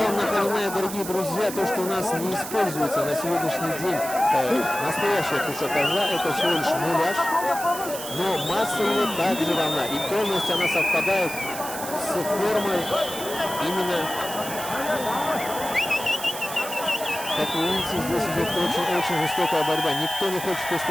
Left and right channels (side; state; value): right; noise; hiss, 9 dB below the sound